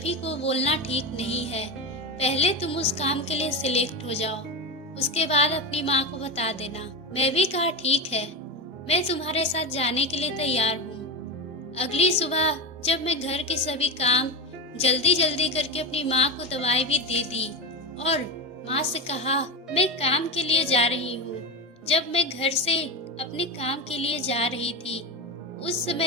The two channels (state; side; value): normal; both; correlation 0.18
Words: को बोलना ठीक नहीं है। पहले तुम उस काम के लिए सिलेक्ट हो जाओ, उसके बाद अपनी माँ को बता देना। मैं भी कहा, ठीक है, मैं तुम्हारे साथ जाने के लिए तैयार हूँ। अगली सुबह जब मैं घर के सभी काम जल्दी जल्दी करके अपनी माँ को दवाई भी दे दी और माँ से कहा, मैं काम के लिए जा रही हूँ। जब मैं घर से अपने काम के लिए जा रही थी उस